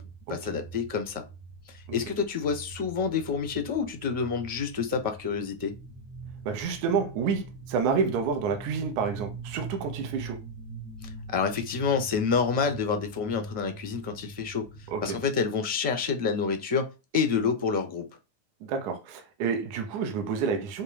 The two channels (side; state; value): left; late; 9.5 ms